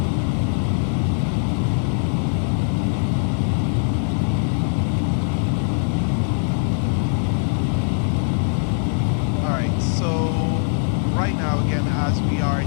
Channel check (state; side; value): silent; right; digital silence